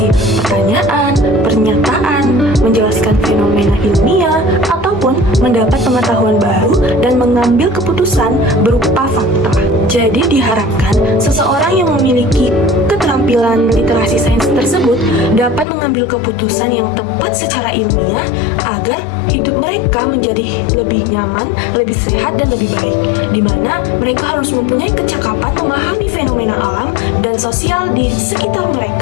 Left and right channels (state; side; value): drops out; right; at 15.7 s